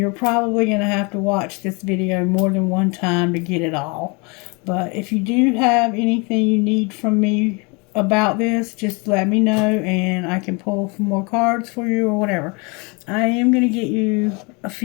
probably going to have to watch this video more than one time to get it all. But if you do have anything you need from me about this, just let me know and I can pull some more cards for you or whatever. I am going to get you a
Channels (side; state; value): right; quieter; 30.2 dB